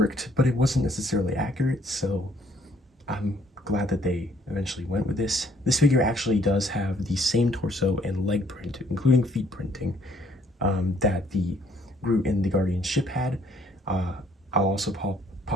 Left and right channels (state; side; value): normal; both; correlation 0.63